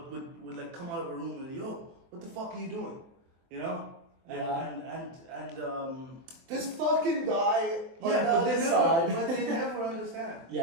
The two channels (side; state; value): left; late; 23 ms